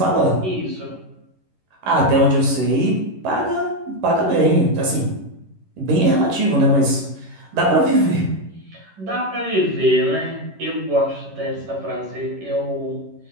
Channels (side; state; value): left; late; 11 ms